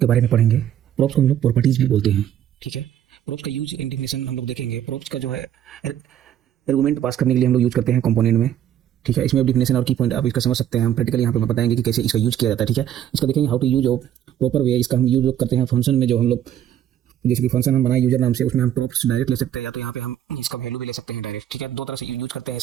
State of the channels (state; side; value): quieter; left; 10.7 dB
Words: बारे में पढ़ेंगे। प्रॉप्स को हम लोग प्रॉपर्टीज भी बोलते हैं। ठीक है, प्रॉप्स का यूज एंड डिफिनेशन हम लोग देखेंगे। प्रॉप्स का जो है आर्गुमेंट पास करने के लिए हम लोग यूज करते हैं कंपोनेंट में। ठीक है, इसमें डिफिनेशन और की पॉइंट आप इसका समझ सकते हैं। हम प्रैक्टिकली यहाँ पे बताएंगे कि कैसे इसका यूज किया जाता है। ठीक है, इसका देखेंगे हाउ टू यूज और प्रॉपर वे। इसका हम यूज करते हैं फंक्शन में, जो हम लोग जैसे कि फंक्शन हम बनाए यूजर नाम से, उसमें हम प्रॉप्स डायरेक्ट ले सकते हैं, या तो यहाँ पे हम इसका वैल्यू भी ले सकते हैं डायरेक्ट। ठीक है, दो तरह से यूज करते हैं